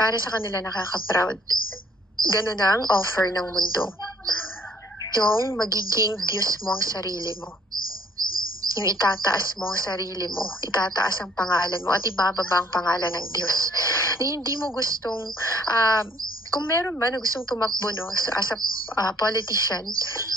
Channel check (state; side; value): normal; both; correlation 0.62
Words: sa kanila nakaka-proud. Ganun ang offer ng mundo. Yung magiging Diyos mo ang sarili mo. Yung itataas mo ang sarili mo, itataas ang pangalan mo, at ibababa ang pangalan ng Diyos. Na hindi mo gustong, kung meron ba na gustong tumakbo, no, as a politician,